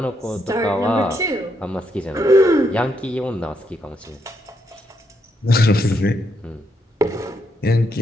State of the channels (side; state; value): both; normal; correlation 0.78